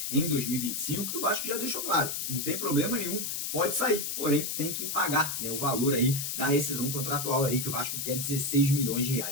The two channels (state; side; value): noise; left; hiss, 3 dB below the sound